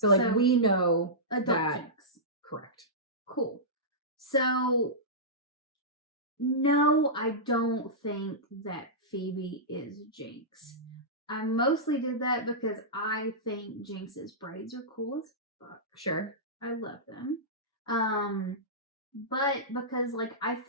we know adult that. Jinx. Correct. Cool. So no, I don't think that Phoebe is Jinx. I mostly did that because I think Jinx's braids are cool as fuck. Sure. I love them. But because like I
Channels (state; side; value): normal; both; correlation -0.16